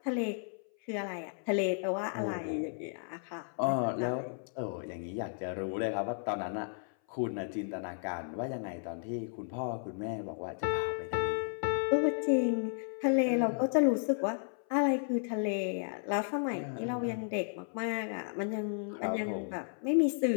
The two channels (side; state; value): right; silent; 55 dB below the other